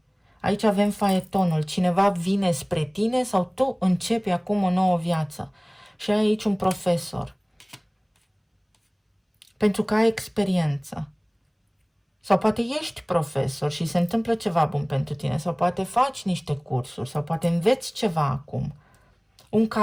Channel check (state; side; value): identical; both; correlation 1.00